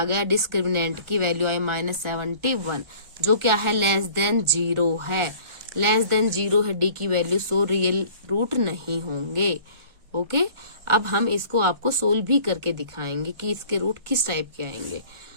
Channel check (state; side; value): late; left; 1.4 ms